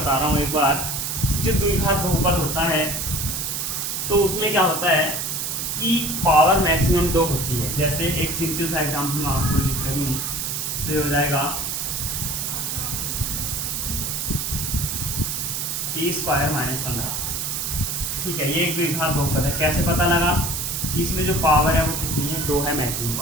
रहा हूँ एक बार। जो द्विघात बहुपद होता है तो उसमें क्या होता है कि पावर मैक्सिमम 2 होती है। जैसे एक सिंपल सा एग्जाम्पल मैं आपको लिख रही हूँ, तो ये हो जाएगा टी स्क्वायर माइनस 15। ठीक है, ये एक द्विघात बहुपद है। कैसे पता लगा कि इसमें जो पावर है वो कितनी है, 2 है मैक्सिमम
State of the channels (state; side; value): noise; right; hiss, 2 dB below the sound